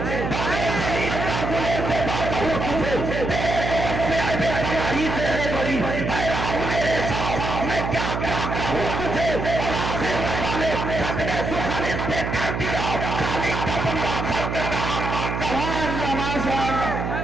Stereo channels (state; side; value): noise; right; hum, 3 dB below the sound